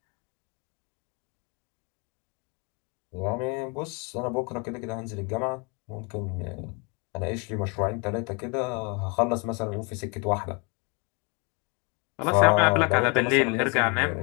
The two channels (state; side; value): quieter; right; 32.5 dB